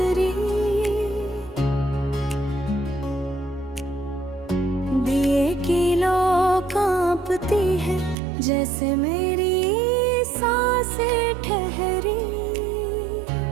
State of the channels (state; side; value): drops out; left; at 8.2 s